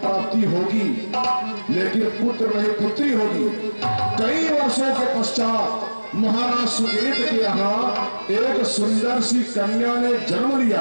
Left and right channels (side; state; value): both; inverted; correlation -1.00